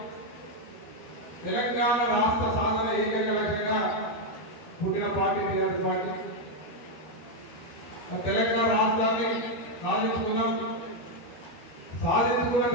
తెలంగాణ రాష్ట్ర సాధన ఏకైక లక్ష్యంగా పుట్టిన పార్టీ టీఆర్ఎస్ పార్టీ। తెలంగాణ రాష్ట్రాన్ని సాధించుకున్న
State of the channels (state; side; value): late; right; 13 ms